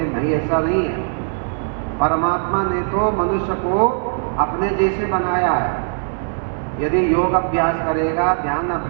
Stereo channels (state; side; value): silent; left; digital silence